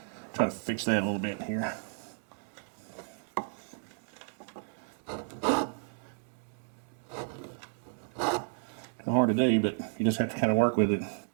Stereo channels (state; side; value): silent; left; 56 dB below the other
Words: try to fix that a little bit here. It's hard to do, but you just have to kind of work with it.